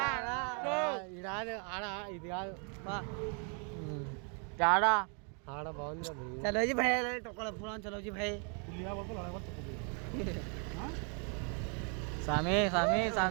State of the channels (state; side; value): quieter; left; 38.3 dB